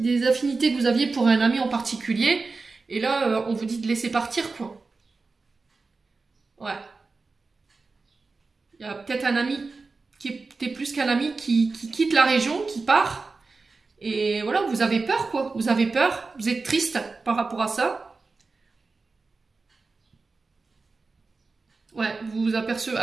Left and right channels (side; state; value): left; quieter; 4.0 dB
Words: affinités que vous aviez pour un ami en particulier. Et là, on vous dit de laisser partir, quoi. Ouais. Il y a peut-être un ami qui était plus qu'un ami qui quitte la région, qui part. Et voilà, vous avez peur, quoi. Vous avez peur, vous êtes triste par rapport à ça. Ouais, vous vous apercevez.